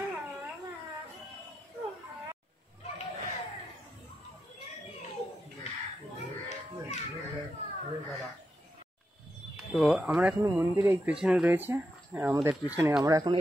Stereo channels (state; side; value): normal; both; correlation 0.86